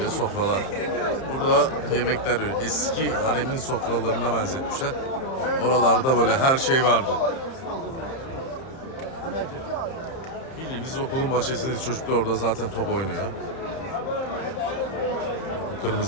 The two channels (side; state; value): right; late; 30 ms